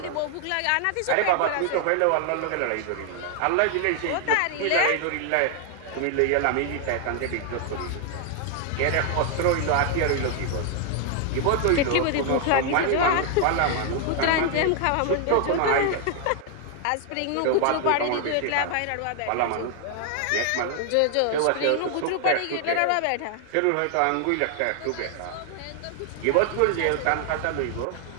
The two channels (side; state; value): both; different; correlation 0.00